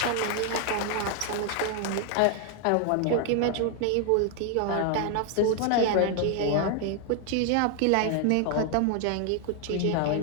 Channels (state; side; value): different; both; correlation 0.00